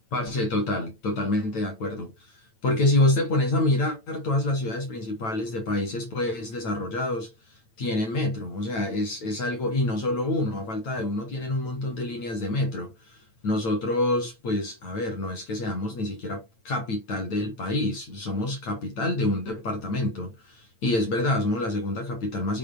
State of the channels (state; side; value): late; right; 8.9 ms